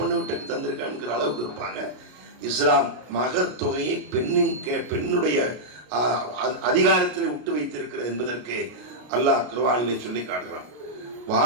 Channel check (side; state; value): left; late; 33 ms